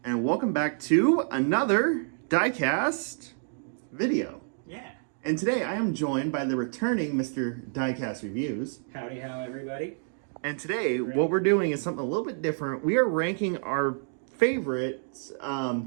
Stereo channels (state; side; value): silent; left; digital silence